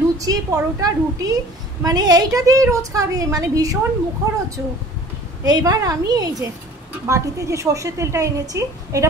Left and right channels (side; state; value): both; normal; correlation 0.47